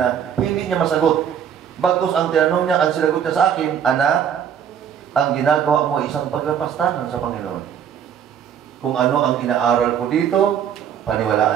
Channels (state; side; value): quieter; left; 8.6 dB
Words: hindi niya masagot. Bagkus ang tinanong niya, ang sinagot niya sa akin, anak, ang ginagawa mo ay isang paglapastangan sa Panginoon. Kung ano ang inaaral ko dito,